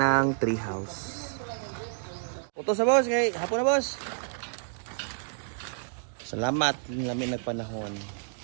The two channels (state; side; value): silent; left; digital silence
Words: tree house. Puto sa boss. Kay hapon na boss. Salamat. Namin nagpanahon.